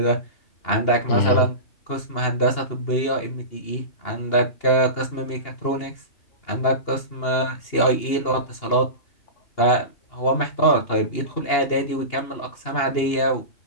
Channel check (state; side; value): late; right; 2.8 ms